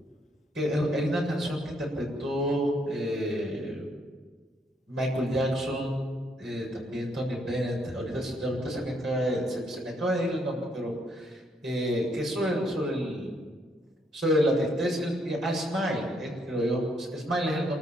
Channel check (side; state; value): both; normal; correlation 0.72